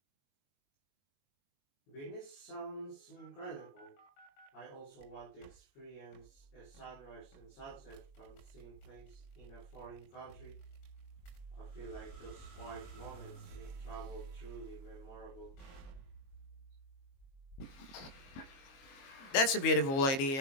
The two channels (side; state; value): right; late; 22 ms